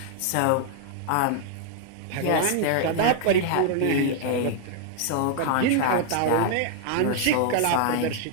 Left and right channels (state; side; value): different; both; correlation 0.00